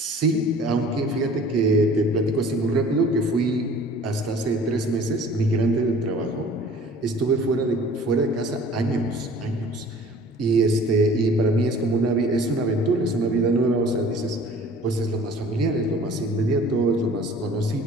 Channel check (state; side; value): normal; both; correlation 0.48